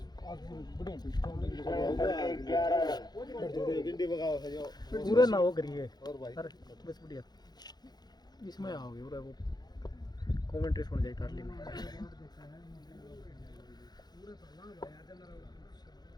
पूरे ना हो करिए सर बस बढ़िया इसमें आओगे पूरा वो कमेंट्री सुन जाए तारली में।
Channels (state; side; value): late; right; 0.20 ms